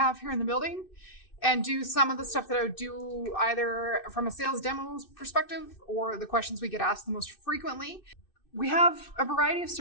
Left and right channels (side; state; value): right; late; 2.6 ms